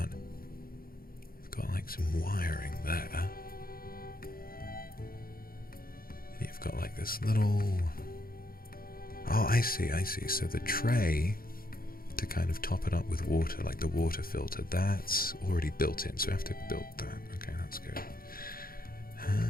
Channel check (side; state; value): right; late; 0.42 ms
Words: like some wiring there. You've got like this little... Oh, I see. So the tray to kind of top it up with water, like the water filter, that's already built in. So I have to build that. Okay, that's good.